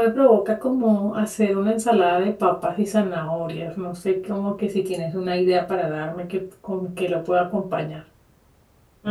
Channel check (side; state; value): both; identical; correlation 1.00